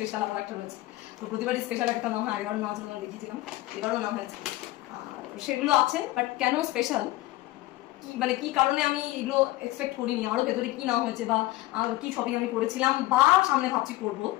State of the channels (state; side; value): quieter; right; 17.5 dB